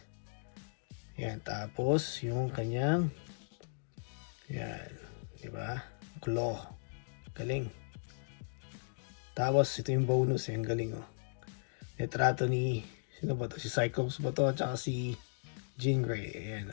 Ayan. Tapos yung kanyang ayan. Diba? Claw. Galing. Tapos, ito yung bonus. Ang galing, oh. Retrato ni, sino ba to? Si Cyclops ba to? At saka si Jean Grey. Ayan,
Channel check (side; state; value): right; silent; digital silence